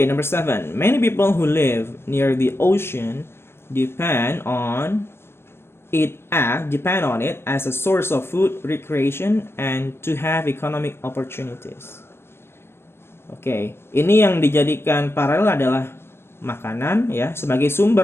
number 7. Many people who live near the ocean depend on it as a source of food, recreation, and to have economic opportunities. Oke, ini yang dijadikan paralel adalah makanan ya, sebagai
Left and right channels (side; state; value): right; late; 0.12 ms